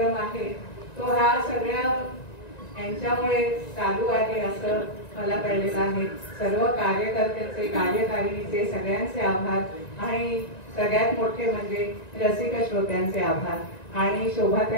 आहे तो हा सगळ्या यांच्यामुळे चालू आहे असं मला कळलेलं आहे. सर्व कार्यकर्त्यांचे, कार्यकारिणीचे सगळ्यांचे आभार आणि सगळ्यात मोठे म्हणजे रसिक श्रोत्यांचे आभार. आणि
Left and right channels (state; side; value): late; right; 1.9 ms